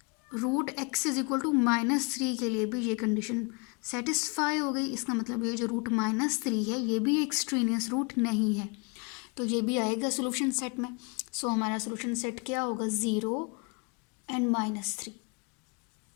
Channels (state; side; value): quieter; right; 32.2 dB